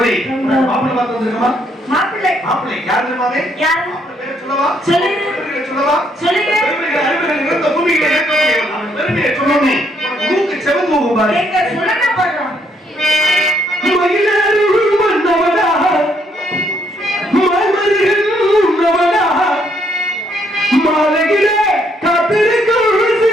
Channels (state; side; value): normal; both; correlation 0.71